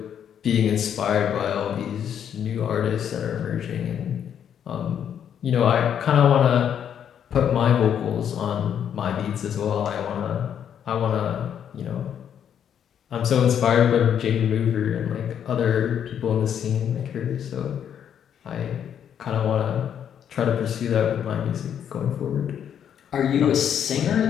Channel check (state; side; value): quieter; right; 8.9 dB